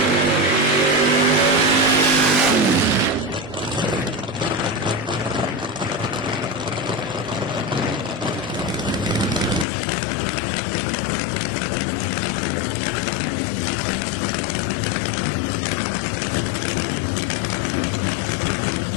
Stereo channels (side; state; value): right; drops out; at 9.7 s